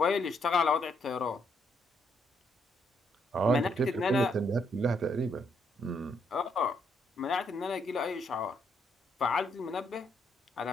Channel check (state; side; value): normal; both; correlation 0.74